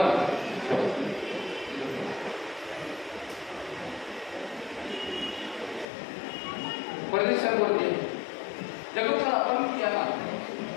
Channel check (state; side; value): drops out; right; at 5.9 s